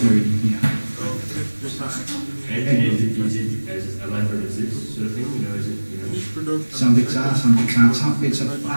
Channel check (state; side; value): inverted; both; correlation -1.00